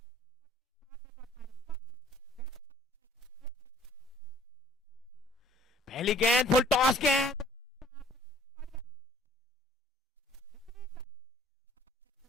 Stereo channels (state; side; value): normal; both; correlation 0.55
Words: पहली गेंद फुल टॉस गेंद,